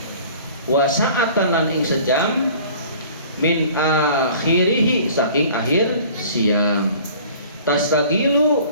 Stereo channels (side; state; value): both; inverted; correlation -0.48